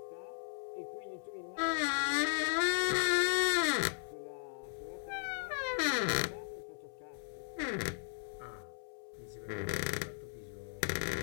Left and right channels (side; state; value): right; silent; 53 dB below the other